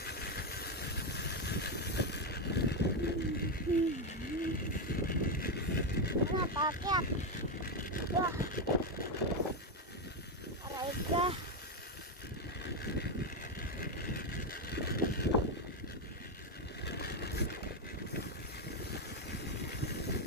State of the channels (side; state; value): both; normal; correlation 0.06